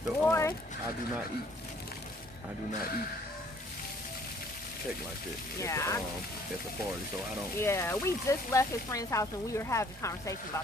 the. Boy, I do not eat cake like this. Yeah. At the party, so I don't. Yeah, we just left his friend's house and we were having a conversation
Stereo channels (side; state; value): both; normal; correlation 0.59